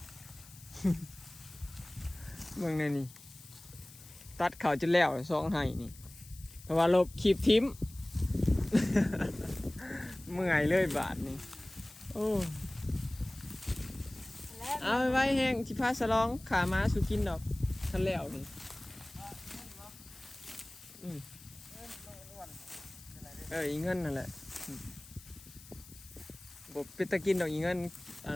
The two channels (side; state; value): left; noise; hiss, 20 dB below the sound